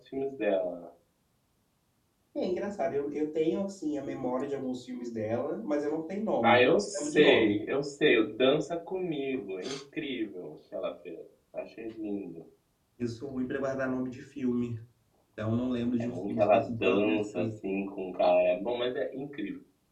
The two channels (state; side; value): identical; both; correlation 1.00